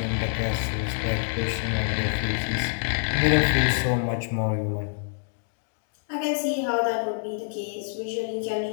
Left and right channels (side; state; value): right; silent; digital silence